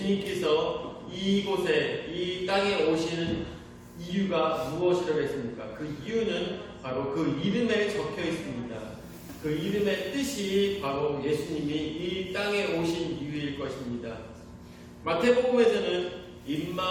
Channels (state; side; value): identical; both; correlation 1.00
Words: 이곳에 이 땅에 오시는 이유가 무엇이라고 했습니까? 그 이유는 바로 그 이름에 적혀 있습니다. 그 이름의 뜻이 바로 예수님이 이 땅에 오신 이유일 것입니다. 마태복음에서는